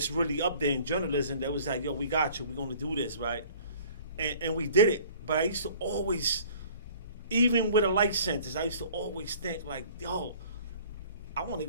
really up there in journalism that was like, yo, we got you. We're gonna do this, right? And we did it. But I used to always, even with a life sentence, I used to always think like, yo, I want to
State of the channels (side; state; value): both; inverted; correlation -0.50